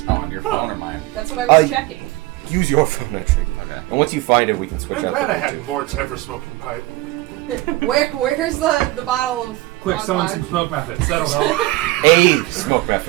Oh, on your phone or mine? That's what I was Uh, checking. Use your phone, actually. Okay. And once you find it, we can switch I'm up. glad I had Mort's ever smoking pipe. Where's the bottle of Quick, Fog someone Cloud? some smoke methods. That'll help. A smoke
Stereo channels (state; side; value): quieter; left; 18.9 dB